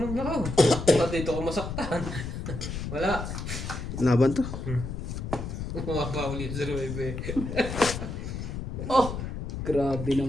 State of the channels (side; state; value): left; noise; rumble, 6 dB below the sound